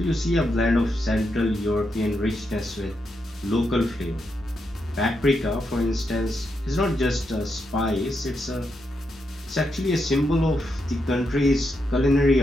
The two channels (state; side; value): normal; both; correlation 0.83